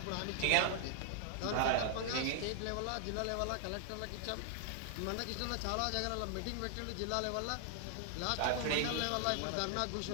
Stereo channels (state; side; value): different; both; correlation 0.00